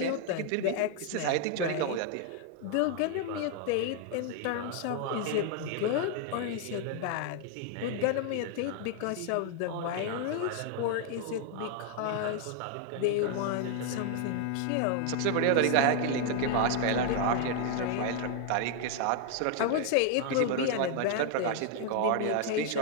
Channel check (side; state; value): both; different; correlation 0.00